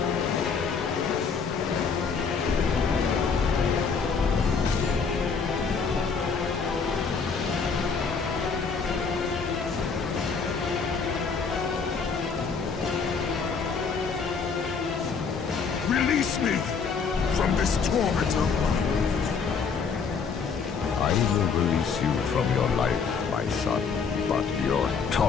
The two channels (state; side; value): quieter; right; 5.5 dB